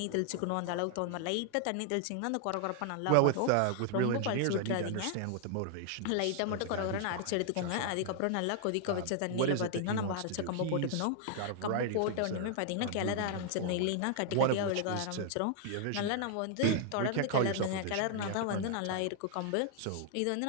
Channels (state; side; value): different; both; correlation 0.00